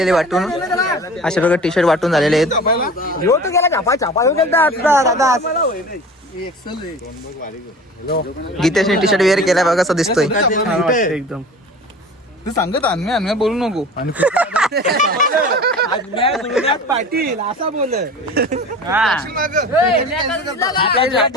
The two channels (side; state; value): both; normal; correlation 0.38